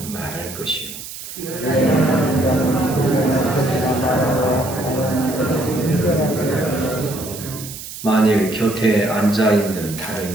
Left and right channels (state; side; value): noise; right; hiss, 11 dB below the sound